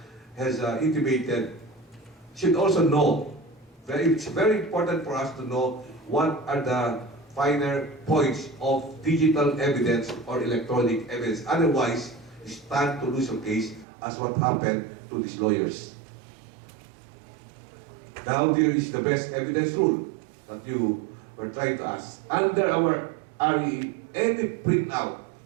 has intimated, should also know. It's very important for us to know what are the finer points of digital evidence or electronic evidence. Otherwise, you stand to lose your case as what happened to these lawyers. Now there is the best evidence rule that you were trying to ask. Under our RE, any printout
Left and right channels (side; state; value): left; drops out; at 13.9 s